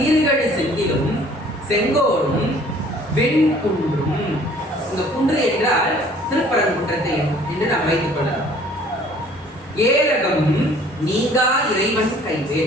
செந்திலும் செங்கோடும் வெண்குன்றும். இந்த குன்று என்றால் திருப்பரங்குன்றத்தை என்று நாம் வைத்துக் கொள்ளலாம். ஏரகம் நீங்கா இறைவன்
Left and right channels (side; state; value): both; normal; correlation 0.54